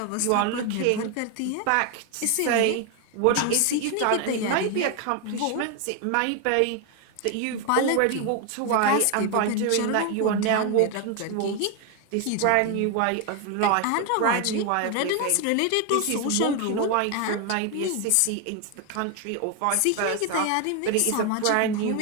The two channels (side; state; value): both; different; correlation 0.01